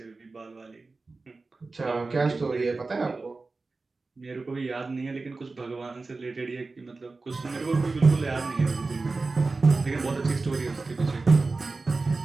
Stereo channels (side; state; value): left; quieter; 3.7 dB